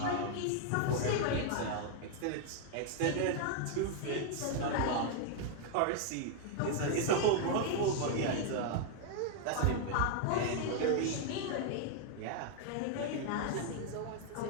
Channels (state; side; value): different; both; correlation 0.00